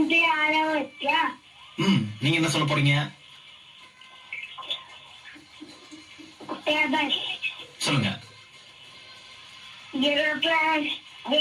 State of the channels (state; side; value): identical; both; correlation 1.00